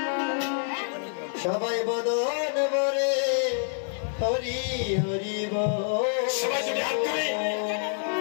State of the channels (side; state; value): right; silent; 59 dB below the other